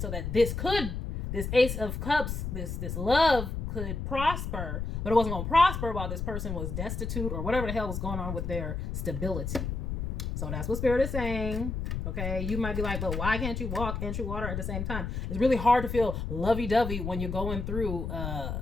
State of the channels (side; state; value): left; noise; rumble, 4 dB below the sound